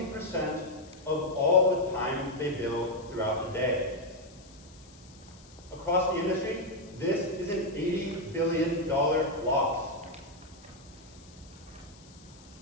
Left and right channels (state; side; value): noise; left; hiss, 24 dB below the sound